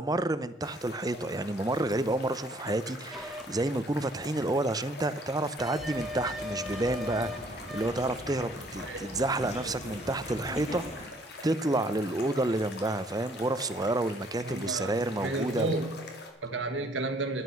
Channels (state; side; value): normal; both; correlation 0.61